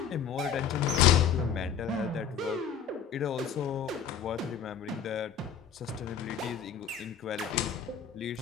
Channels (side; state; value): right; quieter; 7.6 dB